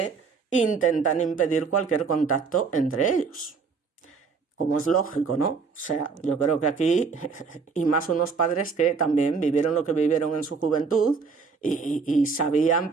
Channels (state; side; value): quieter; left; 5.1 dB